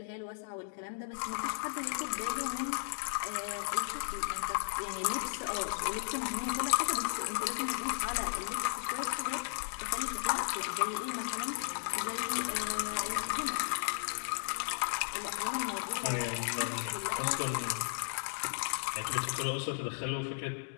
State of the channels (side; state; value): right; silent; digital silence